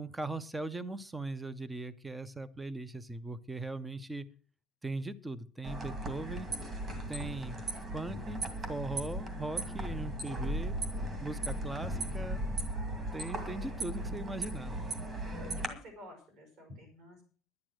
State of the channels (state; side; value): normal; both; correlation 0.56